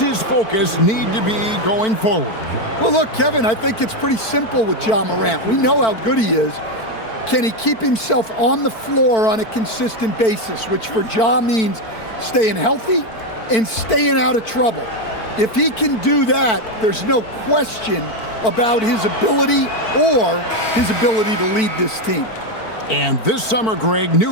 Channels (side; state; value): right; late; 4.5 ms